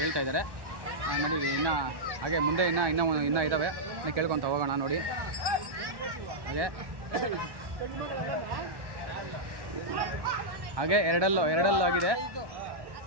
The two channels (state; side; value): late; left; 1.1 ms